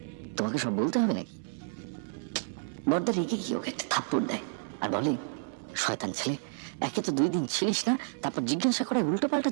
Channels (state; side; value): silent; left; 57 dB below the other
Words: তোমাকে সব বলতে হবে নাকি? বর্দা রেগে গিয়ে ওকে একটা থাপ্পড় দেয় আর বলে, শয়তান ছেলে, একে তো 2 দিন ছিলিস না, তারপর জিজ্ঞাসা করে উল্টো পাল্টা